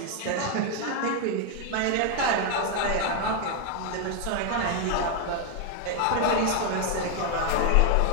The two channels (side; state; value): both; different; correlation 0.01